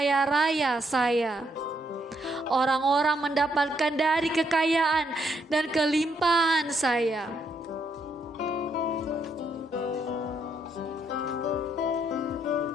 raya saya. Orang-orang mendapatkan dari kekayaan dan kelimpahan saya.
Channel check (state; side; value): normal; both; correlation 0.74